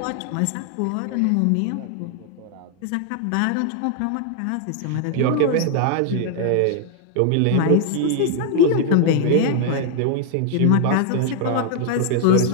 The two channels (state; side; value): different; both; correlation 0.00